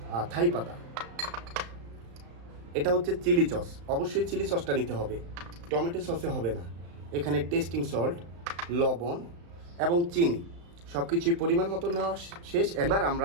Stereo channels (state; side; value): late; left; 35 ms